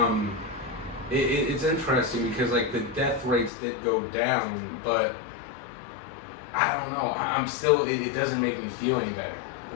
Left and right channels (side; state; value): right; drops out; at 3.5 s